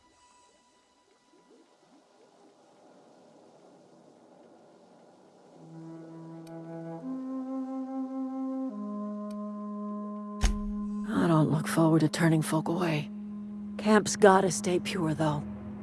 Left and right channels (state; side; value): identical; both; correlation 1.00